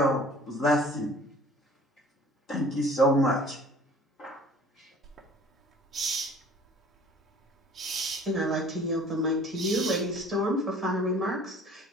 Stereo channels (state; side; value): normal; both; correlation 0.49